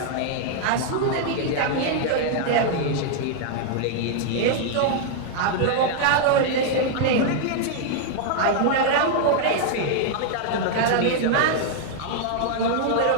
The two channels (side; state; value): both; different; correlation -0.01